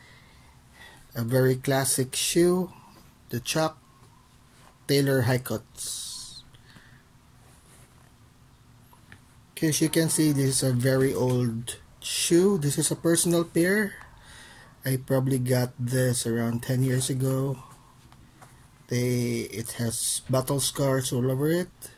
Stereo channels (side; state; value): both; identical; correlation 1.00